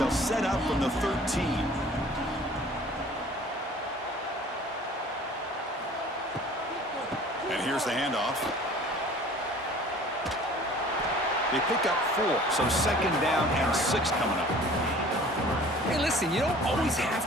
set up from the 13. And here's the handoff. They pick up 4, so second down and 6 coming up. Hey, listen, you don't always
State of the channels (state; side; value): normal; both; correlation 0.48